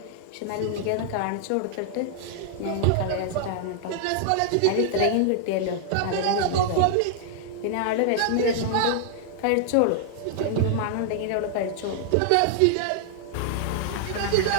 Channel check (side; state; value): both; different; correlation -0.01